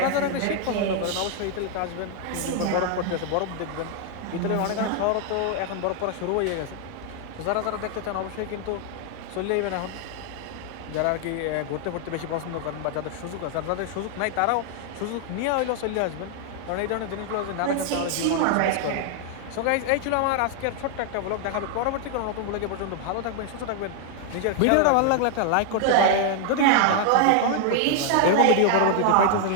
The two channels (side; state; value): both; different; correlation 0.00